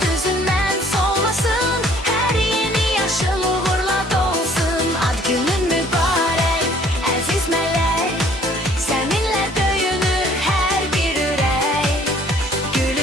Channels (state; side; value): normal; both; correlation 0.57